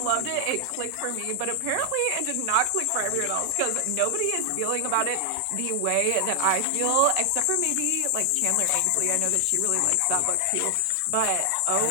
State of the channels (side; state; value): both; different; correlation 0.00